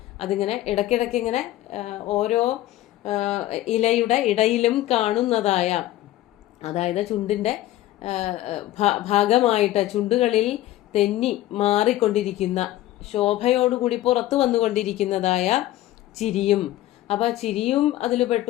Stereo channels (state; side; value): quieter; right; 15.0 dB